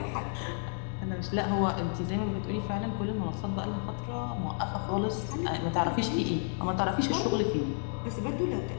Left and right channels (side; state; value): right; silent; 57 dB below the other